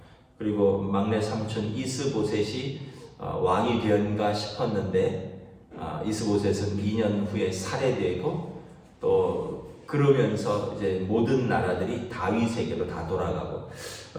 그리고 막내 삼촌 이스보셋이 왕이 되었는가 싶었는데 이스보셋은 2년 후에 살해되고 또 그러면서 이제 모든 나라들이 다윗에게로 다 돌아가고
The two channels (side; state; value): both; identical; correlation 1.00